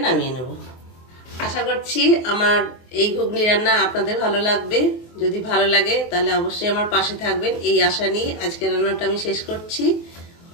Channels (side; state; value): right; late; 24 ms